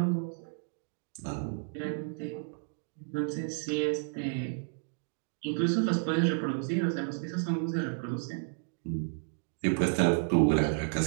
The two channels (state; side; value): silent; left; digital silence